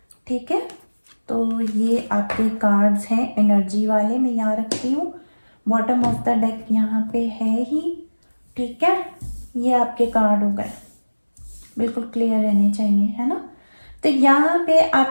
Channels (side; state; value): both; inverted; correlation -1.00